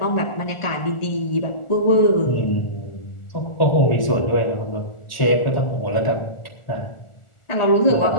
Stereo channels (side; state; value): right; late; 1.4 ms